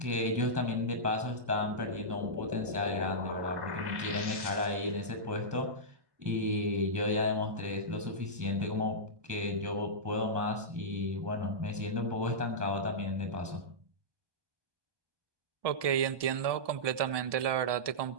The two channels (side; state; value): left; late; 1.2 ms